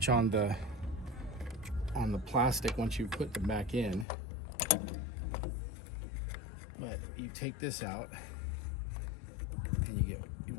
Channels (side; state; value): right; drops out; at 4.0 s